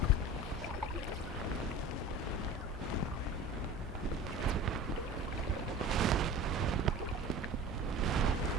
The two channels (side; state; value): both; normal; correlation 0.37